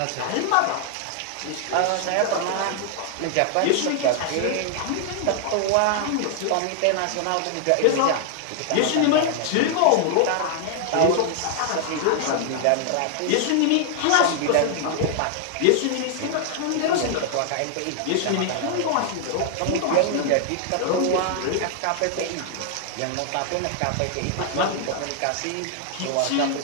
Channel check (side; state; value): both; different; correlation 0.00